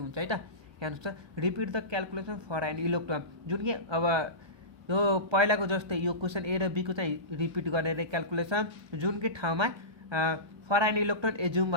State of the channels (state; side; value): late; left; 1.3 ms